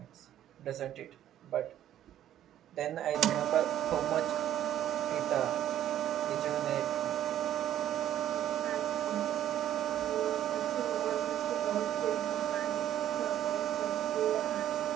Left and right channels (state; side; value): quieter; left; 11.6 dB